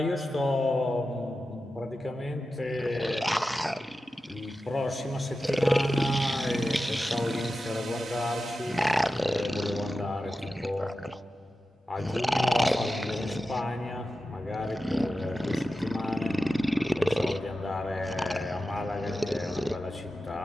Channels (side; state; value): both; normal; correlation 0.93